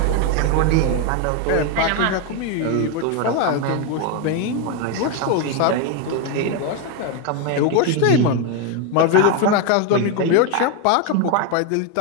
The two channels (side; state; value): both; different; correlation 0.01